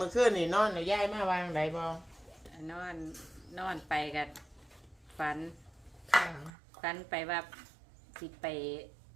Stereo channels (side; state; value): left; drops out; at 6.5 s